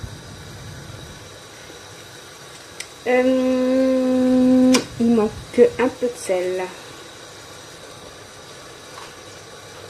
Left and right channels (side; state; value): both; identical; correlation 1.00